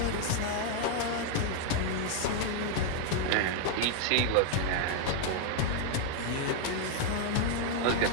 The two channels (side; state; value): both; different; correlation 0.00